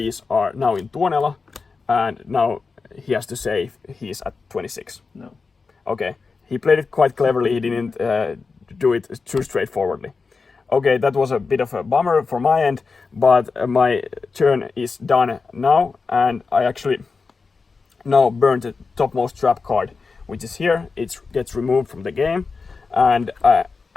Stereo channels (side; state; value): right; quieter; 4.6 dB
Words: are now in Tuonela, and now he has to save. He's at 26. No. Okay, he played it quite cleverly. He didn't do it too straightforwardly. Okay, that was a bit of a bummer for my end, but my turn is done now, and I actually now burned the topmost trap card, which is here. It gets removed from the game, and